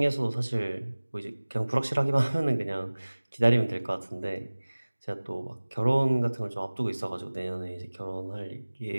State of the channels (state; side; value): inverted; both; correlation -1.00